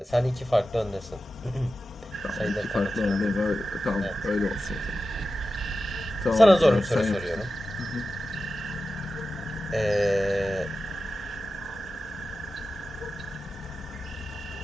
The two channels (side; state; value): both; normal; correlation 0.93